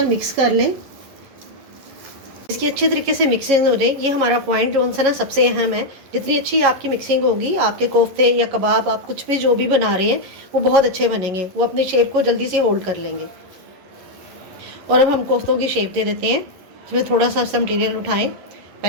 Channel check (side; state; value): left; late; 11 ms